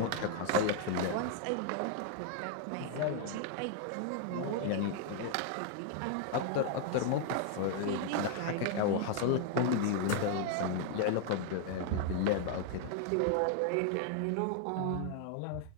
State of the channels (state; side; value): different; both; correlation 0.00